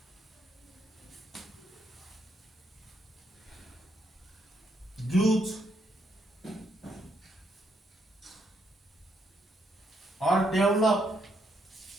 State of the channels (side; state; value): both; normal; correlation 0.75